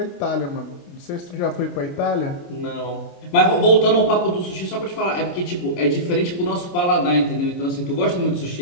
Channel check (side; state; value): right; late; 29 ms